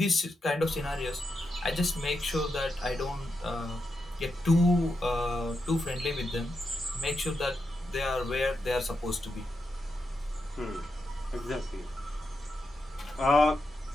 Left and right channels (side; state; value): both; normal; correlation 0.86